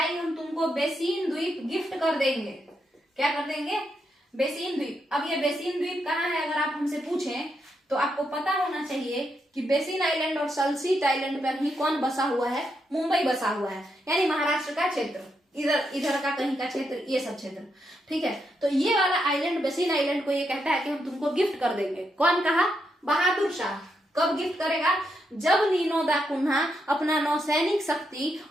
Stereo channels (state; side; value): normal; both; correlation 0.81